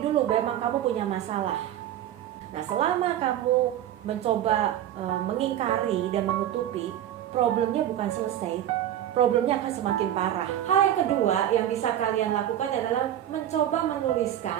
dulu memang kamu punya masalah. Nah, selama kamu mencoba mengingkari dan menutupi, problemnya bukan selesai, problemnya akan semakin parah. Hal yang kedua yang bisa kalian lakukan adalah mencoba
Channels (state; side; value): quieter; left; 11.5 dB